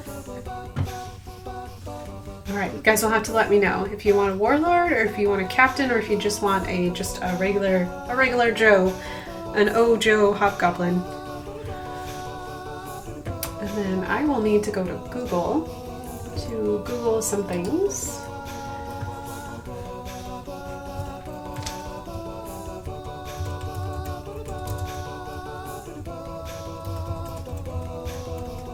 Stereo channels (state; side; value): identical; both; correlation 1.00